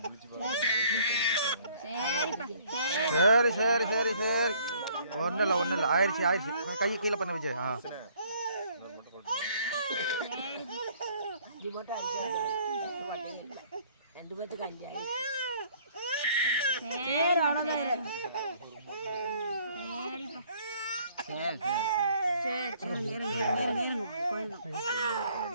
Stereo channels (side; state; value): both; inverted; correlation -0.60